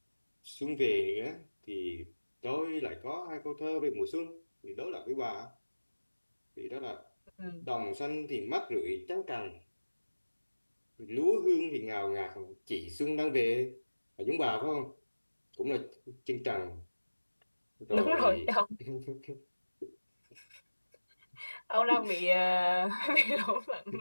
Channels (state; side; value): inverted; both; correlation -1.00